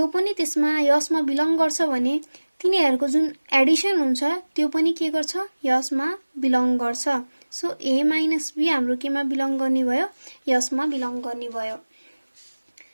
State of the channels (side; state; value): both; inverted; correlation -1.00